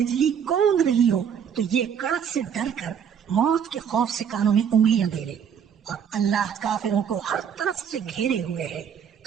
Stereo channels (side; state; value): left; quieter; 7.9 dB